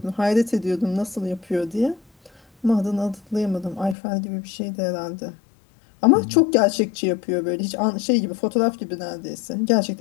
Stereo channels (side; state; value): right; drops out; at 4.0 s